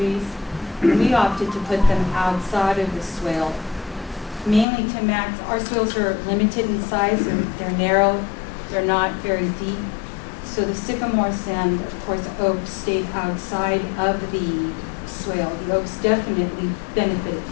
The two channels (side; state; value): right; drops out; at 4.7 s